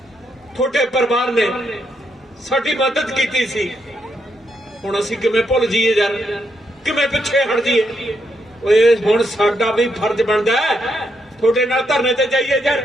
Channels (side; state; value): both; normal; correlation 0.79